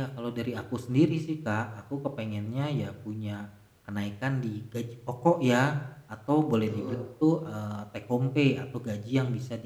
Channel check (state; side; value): identical; both; correlation 1.00